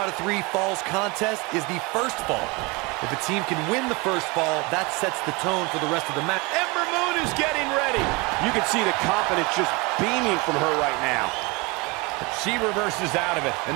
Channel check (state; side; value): quieter; left; 26.7 dB